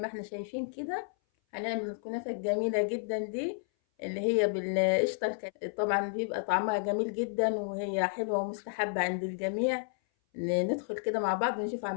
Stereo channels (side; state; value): right; silent; 57 dB below the other